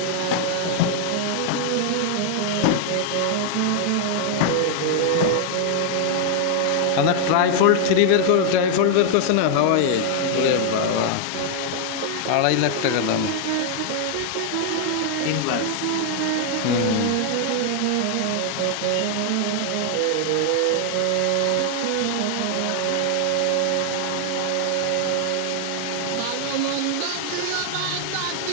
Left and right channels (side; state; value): both; different; correlation 0.00